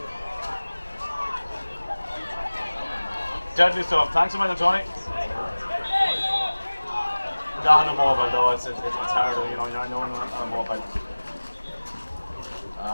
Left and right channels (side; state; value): both; inverted; correlation -1.00